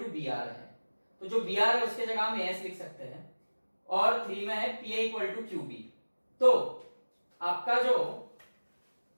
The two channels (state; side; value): inverted; both; correlation -1.00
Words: B R है, तो जो बी आर है उसके जगह हम एएस लिख सकते हैं, और 3 में है पीए इक्वल टू क्यू बी, तो आपका जो